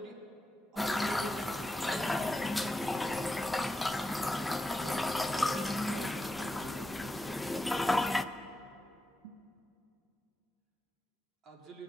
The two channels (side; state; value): both; normal; correlation 0.90